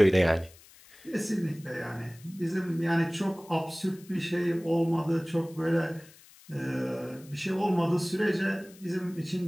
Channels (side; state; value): left; noise; hiss, 24 dB below the sound